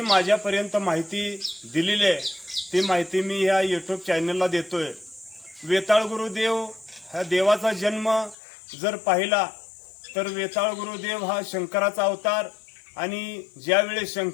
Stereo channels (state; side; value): drops out; right; at 8.3 s